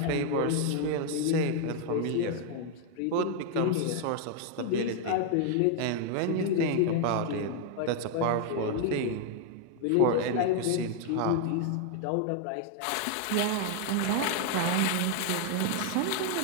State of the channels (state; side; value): different; both; correlation 0.00